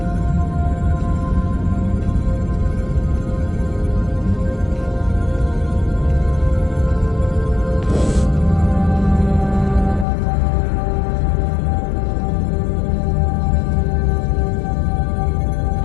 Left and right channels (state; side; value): drops out; right; at 10.1 s